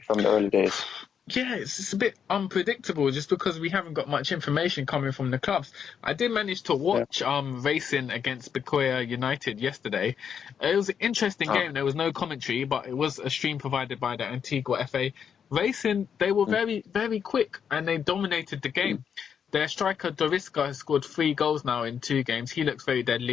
the early days? Yeah, it's a bit unpredictable just because we haven't got much information coming from the clubs. I did manage to watch Racing against Bequia United yesterday. It was an interesting game. There was no commentary, but it was a stream provided by the Antigua FA. Racing, they were very, very quick and they dominated the game. Their striker Dorisca has scored 3 goals now in 2 games. He looks very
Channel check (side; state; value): right; quieter; 7.6 dB